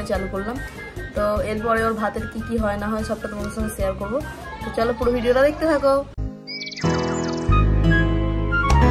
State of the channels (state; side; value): identical; both; correlation 1.00